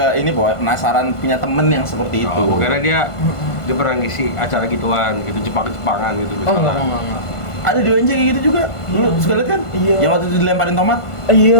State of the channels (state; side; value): late; right; 1.5 ms